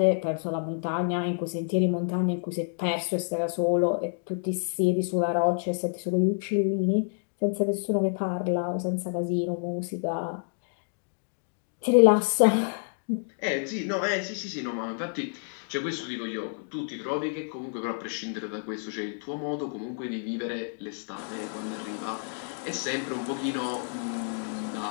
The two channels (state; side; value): silent; right; digital silence